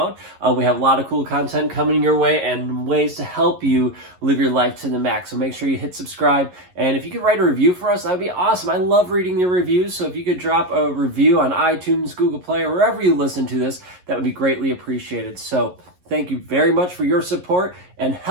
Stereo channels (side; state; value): left; late; 11 ms